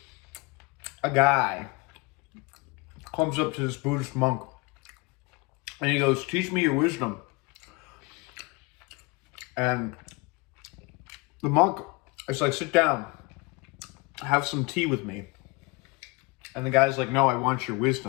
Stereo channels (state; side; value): quieter; right; 25.8 dB